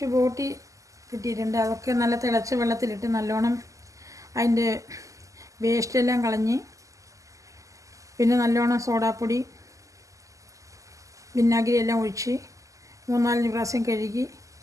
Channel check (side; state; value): left; late; 0.16 ms